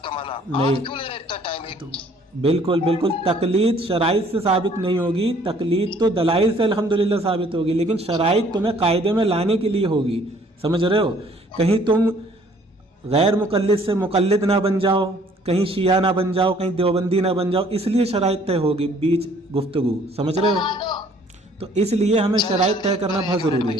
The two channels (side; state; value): both; normal; correlation 0.59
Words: کا معنی نہیں, آپ کیوں لے رہے اتنا ٹائم؟ بالکل تقلید شرائط سے ثابت نہیں ہوگی. تقلید تو دلائل سے الحمدللہ ثابت ہوگی, لیکن شرائط تمہیں قاعدے میں لانے کے لیے ہوگی. سمجھ رہے ہو؟ کہیں تم غیر مقلد سے مقلد نہ بن جاؤ, کہیں شیعہ نہ بن جاؤ, کہیں دیوبندی نہ بن جاؤ, اس لیے شرائط طے ہوگی بیچ گفتگو. سمجھ رہے ہو؟ تو اس لیے ہمیں شرائط طے کرنا بہت ضروری ہے.